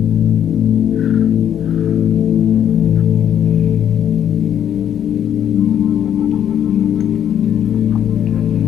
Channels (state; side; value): quieter; right; 9.7 dB